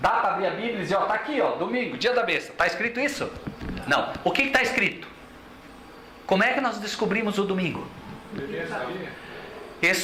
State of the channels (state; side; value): identical; both; correlation 1.00